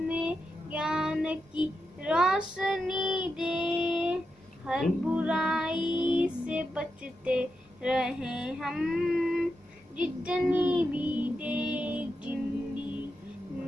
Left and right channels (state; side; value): normal; both; correlation 0.87